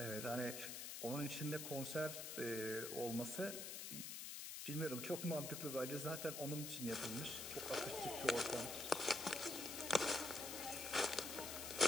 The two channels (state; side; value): noise; left; hiss, 5 dB below the sound